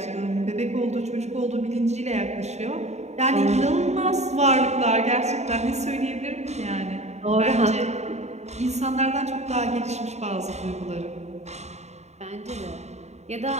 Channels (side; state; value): left; late; 0.32 ms